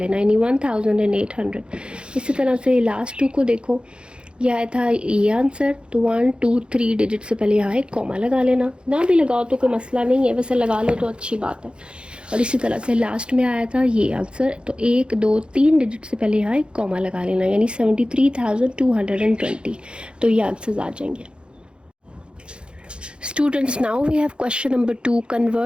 यानी 1800। इसी तरह से लास्ट 2 को देखो, यह आया था ये आंसर, तो 1 2 3 डिजिट से पहले यहाँ एक कॉमा लगा लेना। ना भी लगाओ तो कोई मसला नहीं है, वैसे लगा लो तो अच्छी बात है। और इसी तरह से लास्ट में आया था ये आंसर, तो 1 2 3 डिजिट से पहले यहाँ एक कॉमा लगा लेना, यानी 73,220। तो ये आंसर्स आ जाएंगे। Students, now we have question number 2.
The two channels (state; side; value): late; left; 0.054 ms